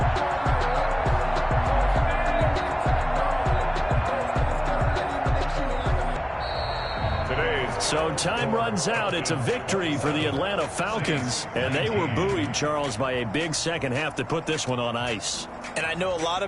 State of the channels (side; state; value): both; identical; correlation 1.00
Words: So time runs out. It's a victory for the Atlanta Falcons, and they were buoyed, Charles, by a big second half to put this one on ice. And I know a lot